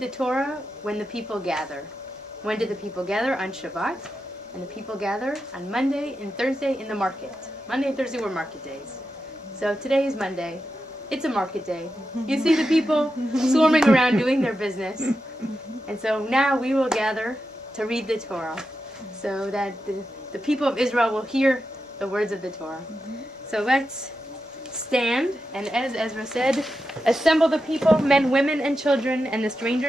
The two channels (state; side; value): normal; both; correlation 0.88